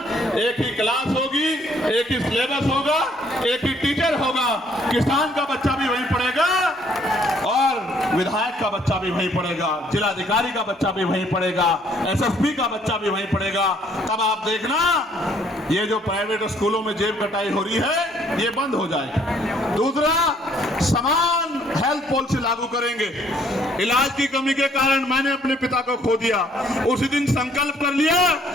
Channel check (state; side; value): normal; both; correlation 0.64